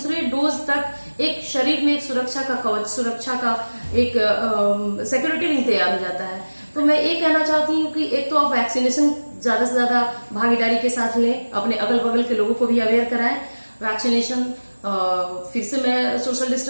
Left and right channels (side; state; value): both; inverted; correlation -1.00